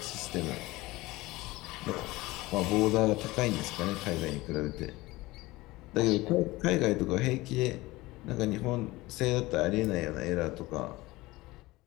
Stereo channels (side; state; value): right; quieter; 20.0 dB